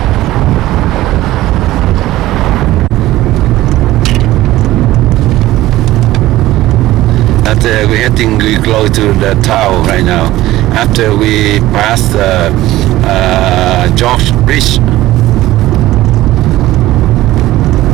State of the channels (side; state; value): left; quieter; 16.1 dB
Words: We're heading close to the town right now. After we pass the George Bridge.